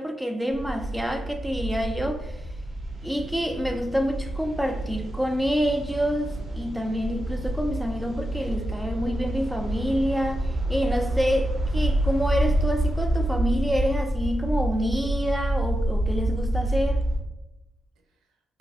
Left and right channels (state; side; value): normal; both; correlation 0.89